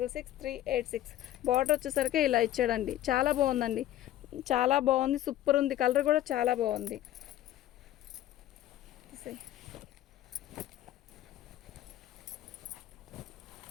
బార్డర్ వచ్చేసరికి ఇలా ఇచ్చాడండి. చాలా బాగుందండి, చాలా బాగుంది, సూపర్ ఉంది. కలర్ కూడా చాలా బాగుంది.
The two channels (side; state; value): right; quieter; 13.2 dB